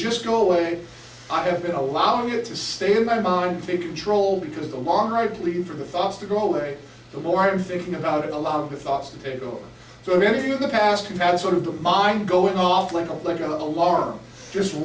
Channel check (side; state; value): both; identical; correlation 1.00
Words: go away, I have been allowing it to stay in my mind and take control, because the longer I plead for the thoughts to go away, the more I am thinking about it, allowing the thoughts to take over. So if any of you in the past who've had sort of the mind going off like an alarm, just